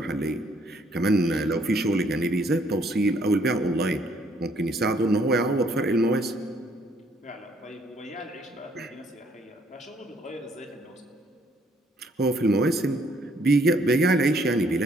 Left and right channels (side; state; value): both; normal; correlation 0.66